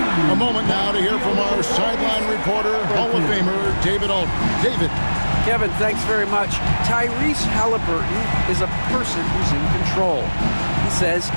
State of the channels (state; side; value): inverted; both; correlation -1.00